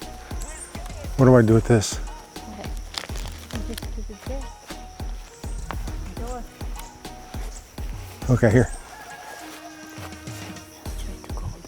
What do I do with this? Okay, here.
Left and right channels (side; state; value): both; identical; correlation 1.00